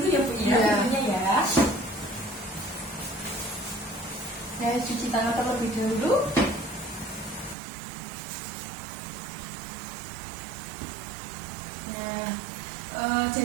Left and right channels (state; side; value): drops out; left; at 7.6 s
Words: ya Bu ya, Iya. pintunya ya. Saya cuci tangan terlebih dahulu. Nah,